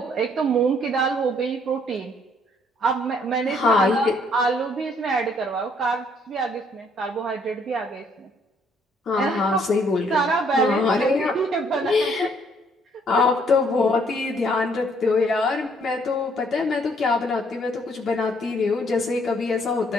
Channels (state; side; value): normal; both; correlation 0.66